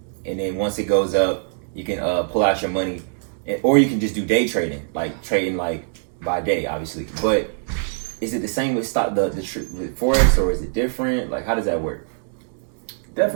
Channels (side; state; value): left; silent; digital silence